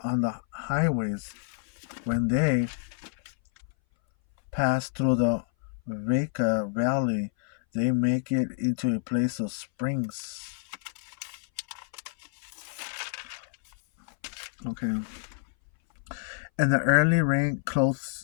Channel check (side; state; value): right; silent; 58 dB below the other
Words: on the highways. When they pass through the Veka Valley, they make it into a place of springs. Okay. And the early rain